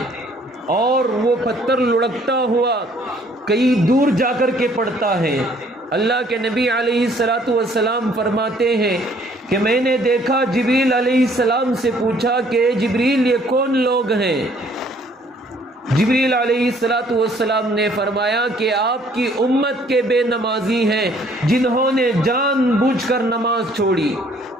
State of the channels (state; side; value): normal; both; correlation 0.61